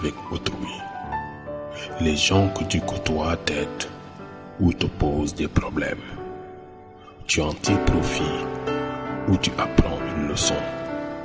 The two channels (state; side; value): identical; both; correlation 1.00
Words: autrui. Les gens que tu côtoies t'aident ou te posent des problèmes. Tu en tires profit ou tu apprends une leçon,